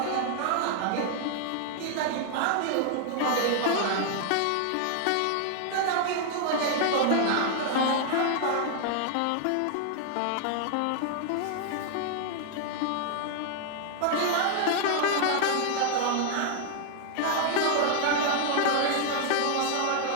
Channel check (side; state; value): both; different; correlation 0.00